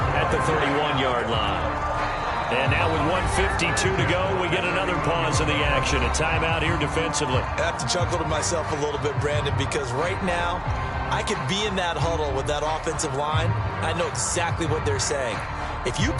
at the 31-yard line. And now with 1:52 to go, we get another pause in the action. A timeout here defensively. I have to chuckle to myself a little bit, Brandon, because right now I could be in that huddle with that offensive line. I know exactly what they're saying. If you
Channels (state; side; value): identical; both; correlation 1.00